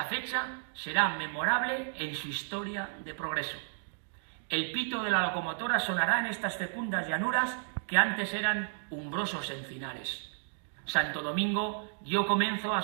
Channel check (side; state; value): left; silent; digital silence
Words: fecha será memorable en su historia de progreso. El pito de la locomotora sonará en estas fecundas llanuras que antes eran umbrosos encinares. Santo Domingo dio comienzo a